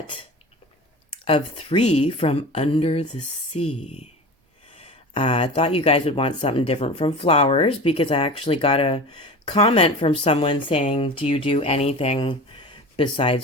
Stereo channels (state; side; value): normal; both; correlation 0.33